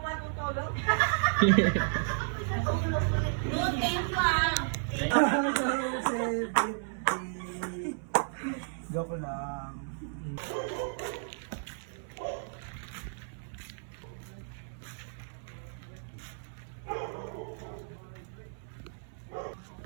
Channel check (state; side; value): silent; left; 56 dB below the other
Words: matutulog. Doon, thank you ah. Joke lang.